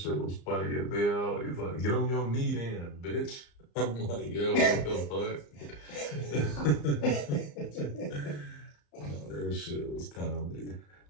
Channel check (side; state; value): right; late; 34 ms